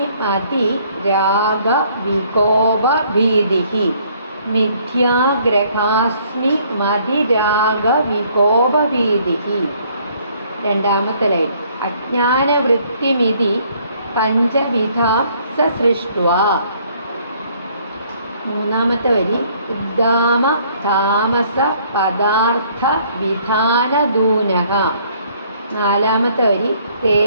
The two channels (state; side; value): inverted; both; correlation -0.62